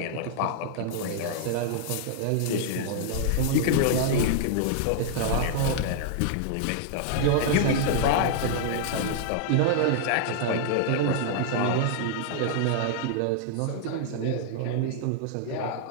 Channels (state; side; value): different; both; correlation -0.01